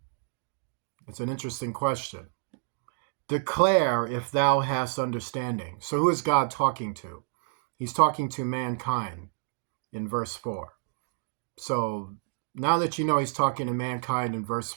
It's an interesting question. Declare if thou hast understanding. So who is God talking to? He's talking to mankind in verse 4. So now that you know he's talking to mankind in verse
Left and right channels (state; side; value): silent; left; digital silence